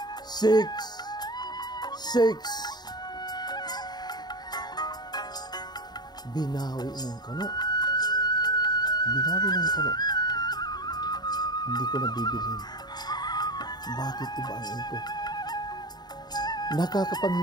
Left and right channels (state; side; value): late; right; 0.20 ms